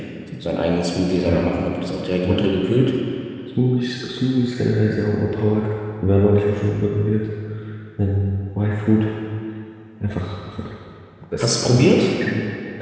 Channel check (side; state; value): both; identical; correlation 1.00